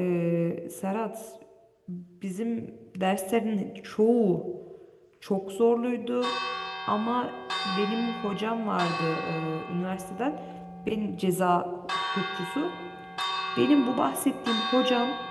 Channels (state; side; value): identical; both; correlation 1.00